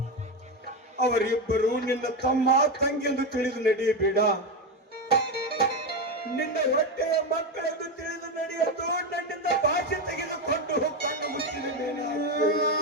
ಅವರಿಬ್ಬರು ನಿನ್ನ ತಮ್ಮ ತಂಗಿಯೆಂದು ತಿಳಿದು ನಡೆಯಬೇಡ, ನಿನ್ನ ಹೊಟ್ಟೆಯ ಮಕ್ಕಳೆಂದು ತಿಳಿದು ನಡೆಯಲು ನನ್ನಿಂದ ಭಾಷೆ ತೆಗೆದುಕೊಂಡು ಕಣ್ಣು ಮುಚ್ಚಿದೆ.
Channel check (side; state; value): both; normal; correlation 0.13